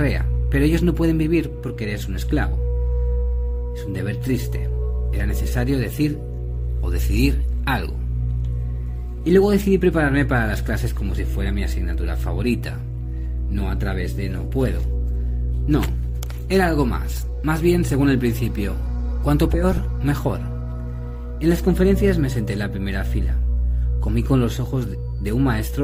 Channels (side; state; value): both; identical; correlation 1.00